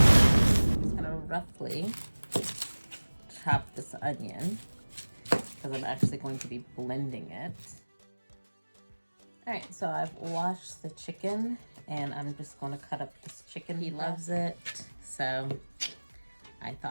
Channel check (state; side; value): inverted; both; correlation -1.00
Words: just gonna roughly chop this onion because I'm actually going to be blending it. All right, so I've washed the chicken and I'm just going to cut up this chicken. He loves it, so I